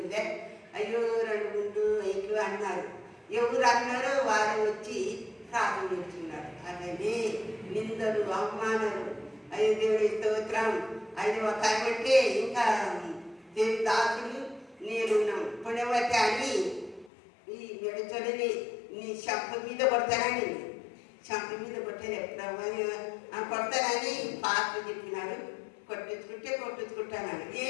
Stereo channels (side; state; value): right; drops out; at 17.1 s